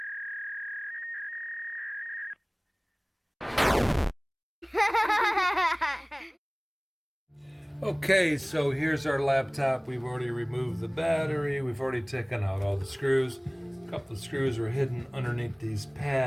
Okay, so here's our laptop. We've already removed the battery. We've already taken out all the screws. A couple of screws are hidden underneath these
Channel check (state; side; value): identical; both; correlation 1.00